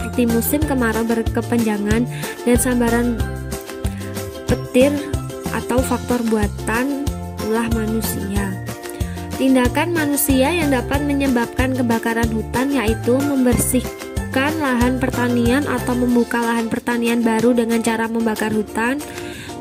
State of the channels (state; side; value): identical; both; correlation 1.00